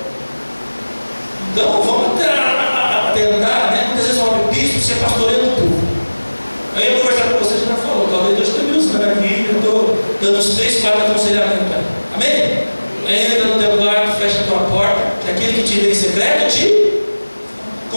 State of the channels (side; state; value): both; inverted; correlation -1.00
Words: Então vamos tentar, né? Muitas vezes eu abro bispo, você pastoreia no povo. Aí eu vou conversar com vocês, já falou, talvez Deus tenha me usando aqui, eu estou dando uns 3, 4 aconselhamentos para ele. Amém? Entra no teu quarto, fecha a tua porta, que aquele que te vê em secreto te